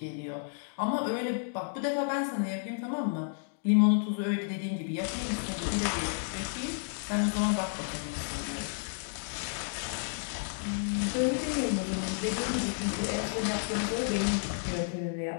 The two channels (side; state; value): right; silent; digital silence